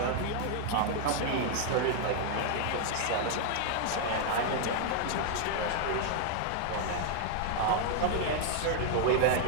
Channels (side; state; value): both; different; correlation 0.00